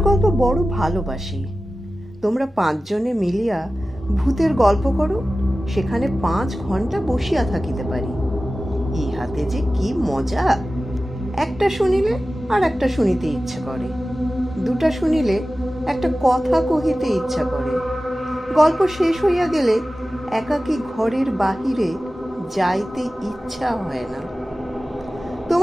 গল্প বড় ভালোবাসি। তোমরা 5 জনে মিলিয়া ভূতের গল্প করো, সেখানে 5 ঘন্টা বসিয়া থাকিতে পারি। ইহাতে যে কি মজা! একটা শুনিলে আর একটা শুনিতে ইচ্ছা করে, 2টা শুনিলে একটা কথা কহিতে ইচ্ছা করে। গল্প শেষ হইয়া গেলে একাকী ঘরের বাহিরে যাইতে ইচ্ছা হয় না।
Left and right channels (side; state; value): both; normal; correlation 0.95